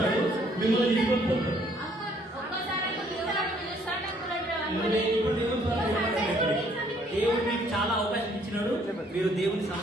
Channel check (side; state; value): both; normal; correlation 0.64